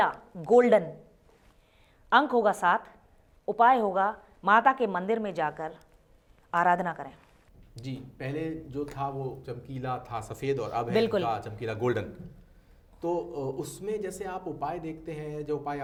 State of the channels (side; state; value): both; identical; correlation 1.00